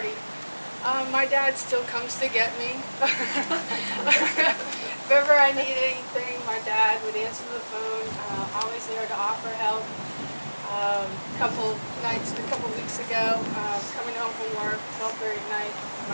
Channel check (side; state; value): both; inverted; correlation -1.00